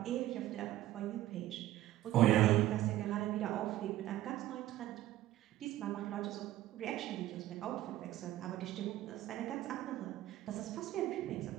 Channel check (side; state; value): left; quieter; 14.4 dB